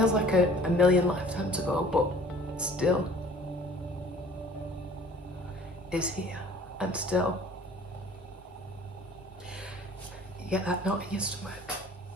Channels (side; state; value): both; normal; correlation 0.50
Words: like a million lifetimes ago, but still is here, and still you get that knot in your stomach.